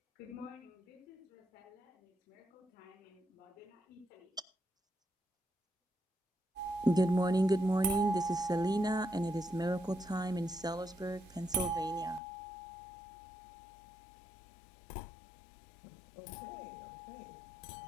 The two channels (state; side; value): drops out; right; at 12.2 s